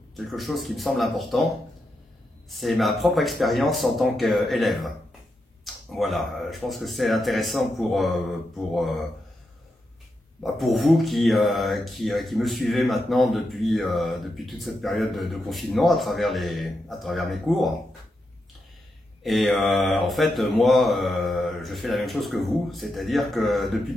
quelque chose qui me semble important. C'est ma propre expérience en tant qu'élève. Voilà, je pense que c'est intéressant pour vous qui me suivez maintenant depuis toute cette période de confinement à travers mes cours. Et en fait, moi, je fais la même chose que vous, c'est-à-dire que depuis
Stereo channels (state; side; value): normal; both; correlation 0.85